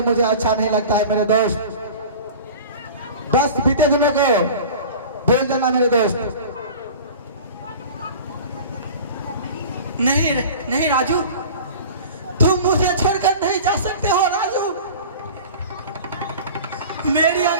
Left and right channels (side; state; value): both; inverted; correlation -0.38